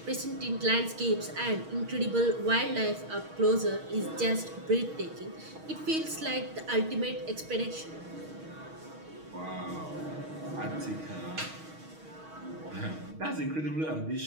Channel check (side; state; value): left; late; 6.4 ms